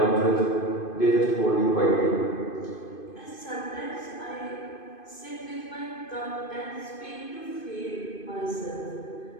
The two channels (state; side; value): late; right; 2.5 ms